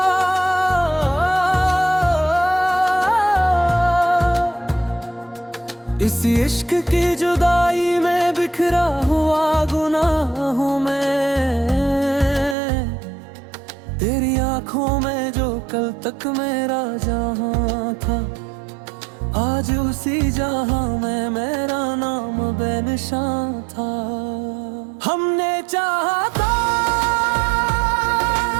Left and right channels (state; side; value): drops out; left; at 12.6 s